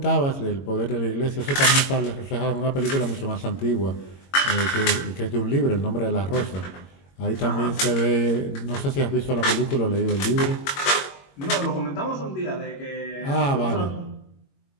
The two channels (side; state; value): right; late; 22 ms